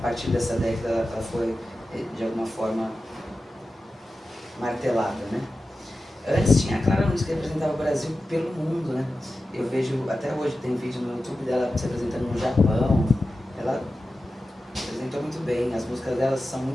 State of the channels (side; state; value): both; normal; correlation 0.93